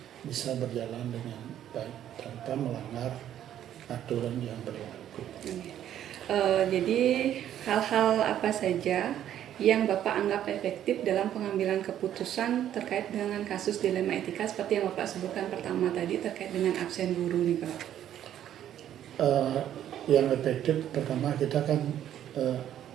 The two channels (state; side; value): quieter; left; 11.0 dB